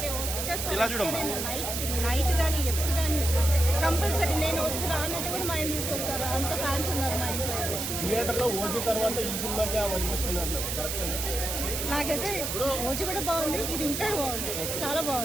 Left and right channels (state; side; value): noise; right; hiss, 3 dB below the sound